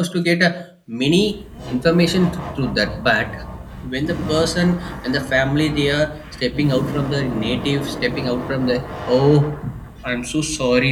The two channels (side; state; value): both; identical; correlation 1.00